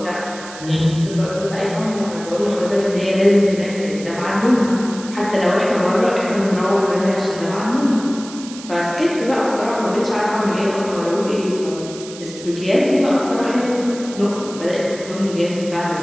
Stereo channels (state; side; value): noise; right; hiss, 15 dB below the sound